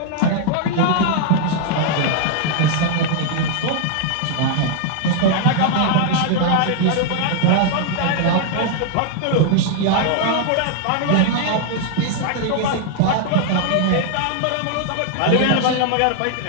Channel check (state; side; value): different; both; correlation 0.00